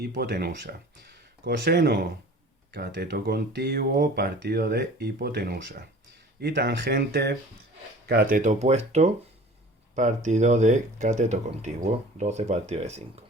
Coseno, cateto contiguo partido de hipotenusa. Y tangente, cateto opuesto partido de cateto contiguo, 12 partido de 5.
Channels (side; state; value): both; normal; correlation 0.44